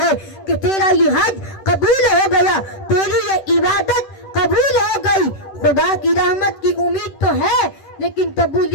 ہے کہ تیرا یہ حج قبول ہو گیا، تیری یہ عبادت قبول ہو گئی۔ خدا کی رحمت کی امید تو ہے، لیکن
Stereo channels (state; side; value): late; right; 10 ms